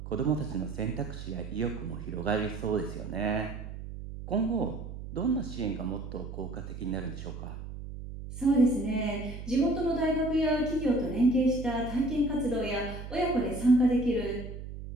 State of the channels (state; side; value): noise; right; hum, 10 dB below the sound